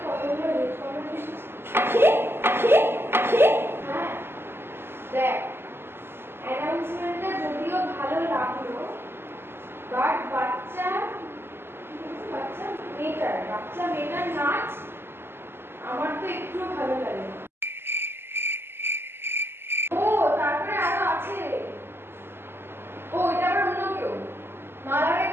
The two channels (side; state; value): left; late; 0.11 ms